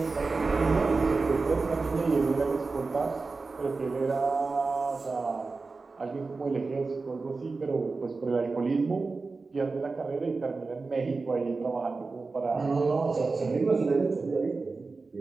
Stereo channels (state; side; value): quieter; left; 4.0 dB